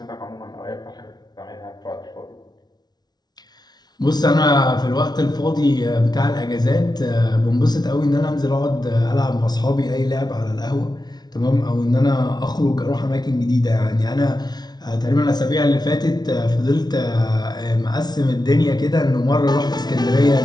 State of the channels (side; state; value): right; late; 0.19 ms